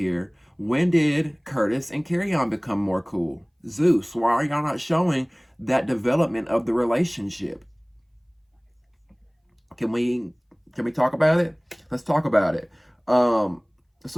When did Curtis and Kerrion become more cool? Zeus, why are y'all not showing that development of the relationship? Can we talk about it? Let's talk about it.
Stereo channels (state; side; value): identical; both; correlation 1.00